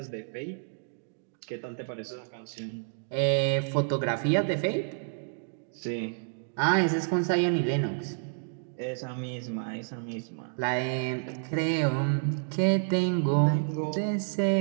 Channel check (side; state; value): left; silent; digital silence